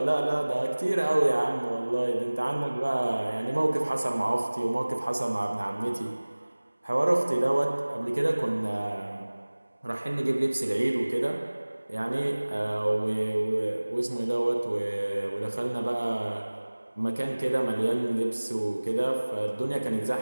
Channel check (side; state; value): both; inverted; correlation -1.00